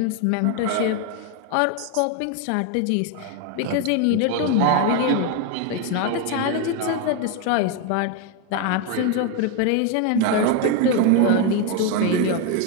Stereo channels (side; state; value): both; different; correlation 0.01